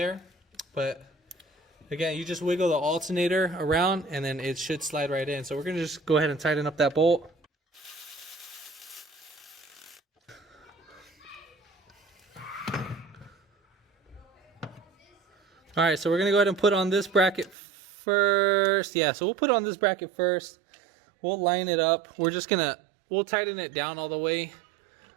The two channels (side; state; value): left; drops out; at 17.6 s